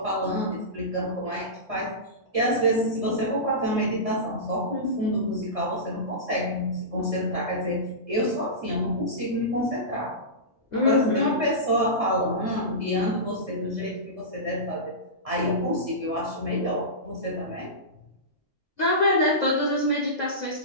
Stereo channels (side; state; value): both; normal; correlation -0.19